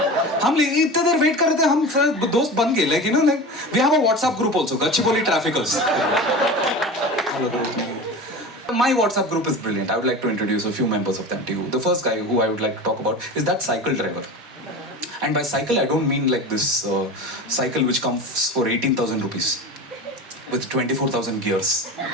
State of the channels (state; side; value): normal; both; correlation 0.31